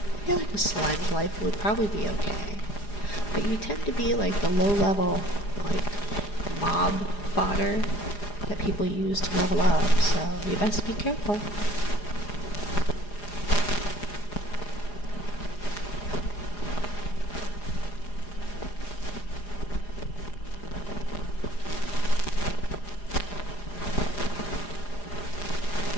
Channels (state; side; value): late; right; 4.9 ms